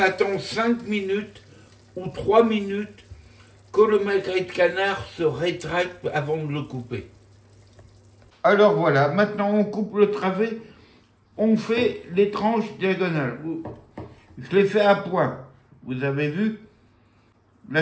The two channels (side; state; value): both; identical; correlation 1.00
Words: 5 minutes ou 3 minutes que le magret de canard se rétracte avant de le couper. Alors voilà, maintenant on coupe le travet, on fait les tranches diagonales. Je les fais à point, vous avez vu